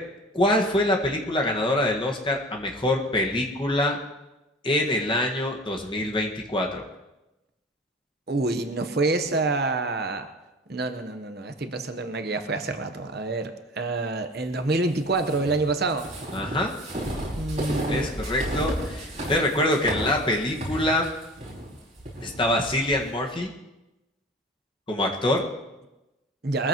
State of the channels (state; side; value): normal; both; correlation 0.40